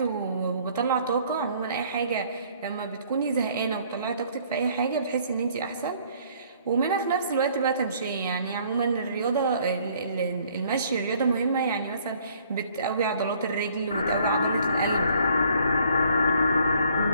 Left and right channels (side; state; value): both; inverted; correlation -0.60